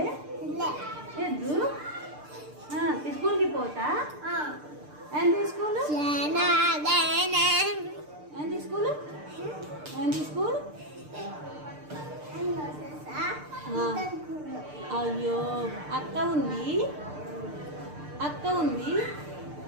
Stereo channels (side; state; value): left; late; 6.7 ms